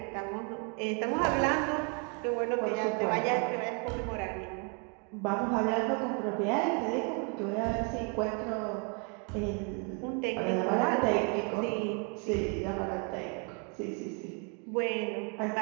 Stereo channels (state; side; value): quieter; left; 36.2 dB